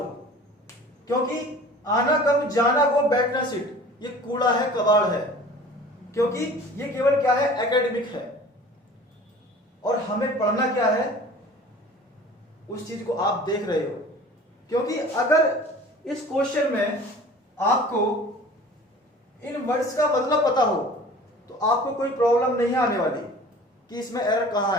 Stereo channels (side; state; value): both; normal; correlation 0.44